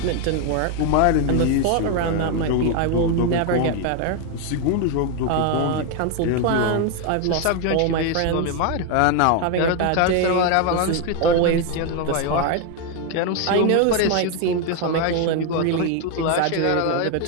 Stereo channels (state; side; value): different; both; correlation 0.01